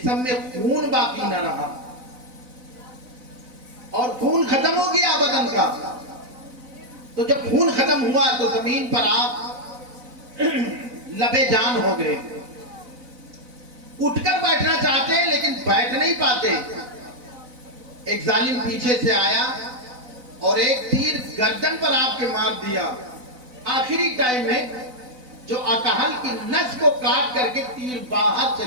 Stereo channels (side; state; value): left; late; 4.0 ms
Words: میں خون باقی نہ رہا اور خون ختم ہو گیا بدن کا. تو جب خون ختم ہوا تو زمین پر آپ لبے جان ہو گئے. اٹھ کر بیٹھنا چاہتے ہیں لیکن بیٹھ نہیں پاتے. ایک ظالم پیچھے سے آیا اور ایک تیر گردن پر آپ کے مار دیا. آخری ٹائم میں جو اکحل کی نس کو کاٹ کر کے تیر باہر